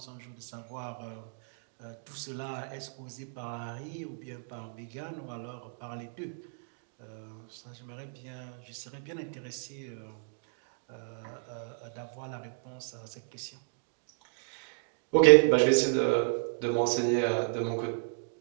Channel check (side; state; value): left; silent; digital silence